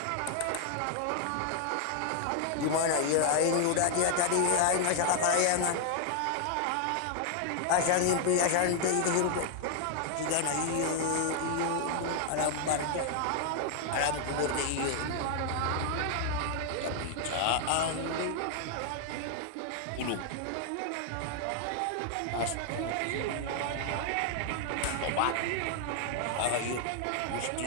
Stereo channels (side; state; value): both; different; correlation 0.00